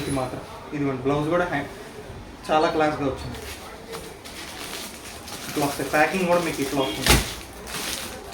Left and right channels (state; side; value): identical; both; correlation 1.00